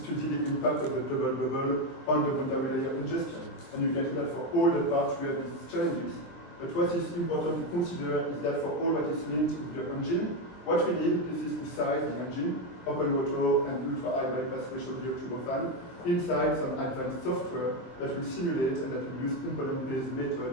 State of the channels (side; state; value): right; late; 23 ms